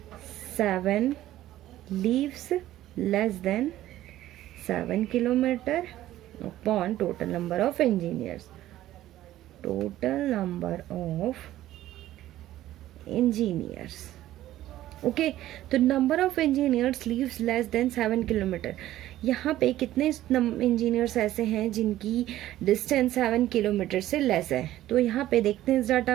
7 leaves less than 7 kilometer upon total number of engineers, okay. तो number of engineers leaves less than 7 kilometre, यहाँ पे कितने engineers ऐसे हैं जिनकी distance 7 kilometre से less है, तो यहाँ पे देखते हैं इस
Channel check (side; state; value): left; quieter; 14.1 dB